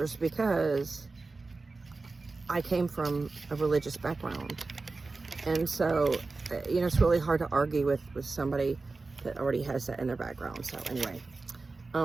because I came from a religious background. And so, you know, it's really hard to argue with somebody that already has that in their background. So anyway,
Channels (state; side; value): quieter; left; 3.8 dB